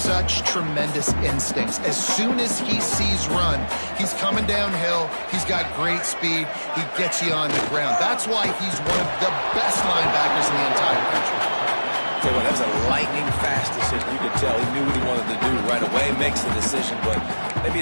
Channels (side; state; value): both; inverted; correlation -1.00